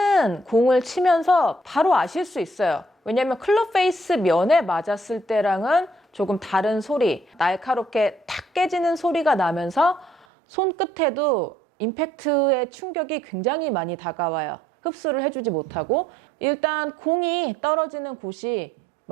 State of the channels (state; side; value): drops out; left; at 10.2 s